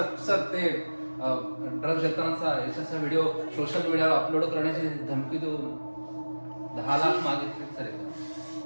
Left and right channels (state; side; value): inverted; both; correlation -1.00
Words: सर ते ड्रग्ज देतानाचा यशाचा व्हिडिओ सोशल मीडियावर अपलोड करण्याची धमकी देऊन 10 लाख मागितले सर.